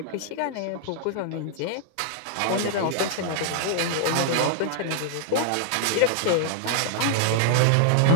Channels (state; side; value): different; both; correlation -0.01